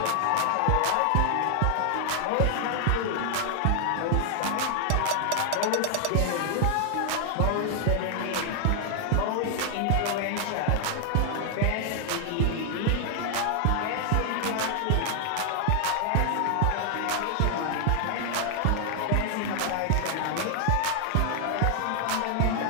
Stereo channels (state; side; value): different; both; correlation 0.00